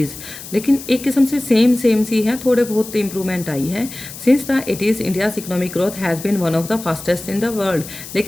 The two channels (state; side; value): noise; left; hiss, 13 dB below the sound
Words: लेकिन एक किस्म से सेम सी है, थोड़े बहुत इंप्रूवमेंट आई है। Since the 80s India's economic growth has been one of the fastest in the world.